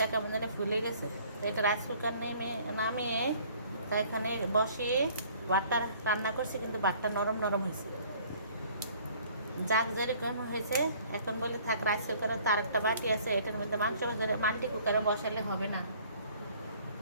কেমন জানি ফুলে গেছে। তো এটা রাইস কুকার নামিয়ে তা এখানে বসিয়ে ভাতটা রান্না করছি, কিন্তু ভাতটা নরম নরম হয়েছে। যাক যেরকম হয়েছে, এখন বলে থাক রাইস কুকারে তার একটা বাটি আছে, এটার মধ্যে মাংস ভেজে মাল্টি কুকারে বসালে হবে না।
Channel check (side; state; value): both; inverted; correlation -0.55